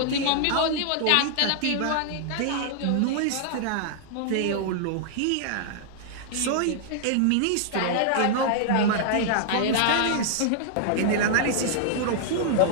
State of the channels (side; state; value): both; different; correlation -0.01